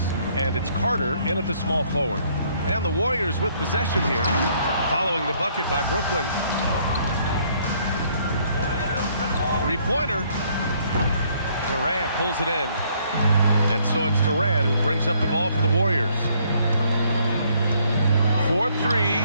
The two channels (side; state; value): both; inverted; correlation -0.66